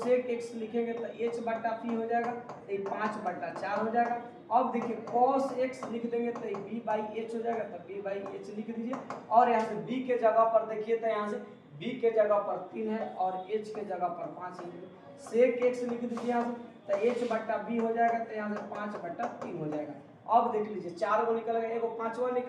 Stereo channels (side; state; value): both; identical; correlation 1.00